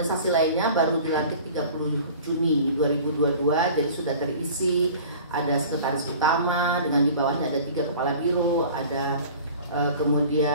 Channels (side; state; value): both; inverted; correlation -0.43